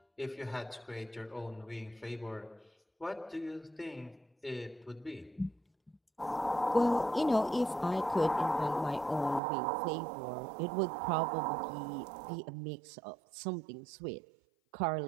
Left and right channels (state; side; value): drops out; left; at 9.4 s